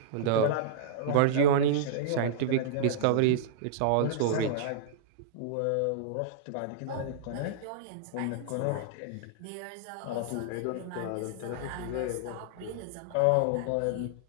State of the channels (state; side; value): different; both; correlation -0.02